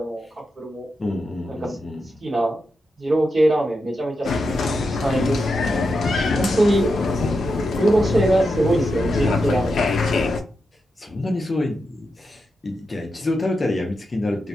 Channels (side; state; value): both; normal; correlation 0.87